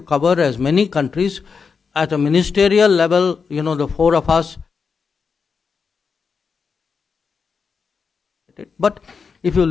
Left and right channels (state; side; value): quieter; right; 5.5 dB